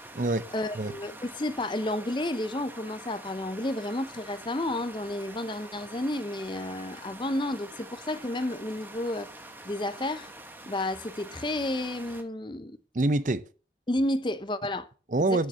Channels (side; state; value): both; normal; correlation 0.59